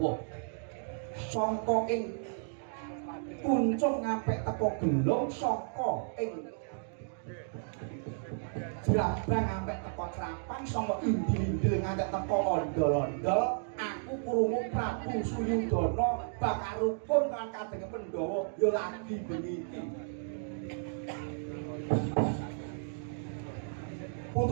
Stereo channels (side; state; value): left; silent; digital silence